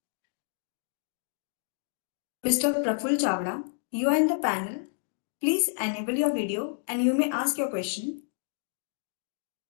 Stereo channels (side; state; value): right; silent; digital silence